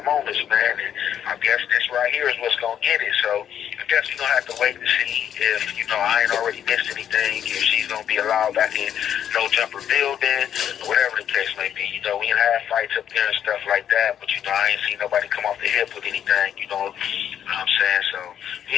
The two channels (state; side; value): quieter; right; 9.5 dB